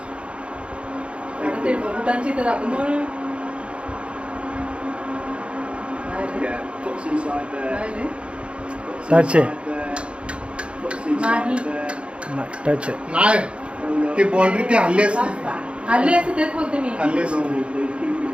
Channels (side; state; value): left; late; 0.058 ms